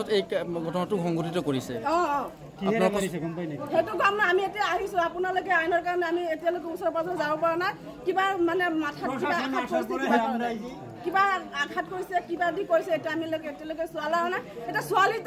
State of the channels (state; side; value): identical; both; correlation 1.00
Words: এই ঘটনাটো সংঘটিত কৰিছে কিহেৰে কৰিছে গম পাই নেকি সেইটো কাম না আমি এতিয়া আহিছো আপোনালোকে আইনৰ কাৰণে আমি এতিয়ালৈকে ওচৰ পাজৰ যাব পৰা নাই কিবা মানে মাথাত কিবা আঘাত কৰিছে কিবা দি কৰিছে এটা আমি এতিয়ালৈকে চোৱালা নাই এটা